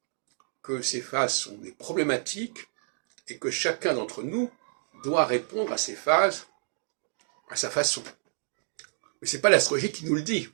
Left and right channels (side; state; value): left; silent; digital silence